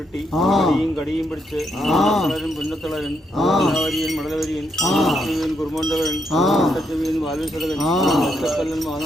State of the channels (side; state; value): both; normal; correlation 0.78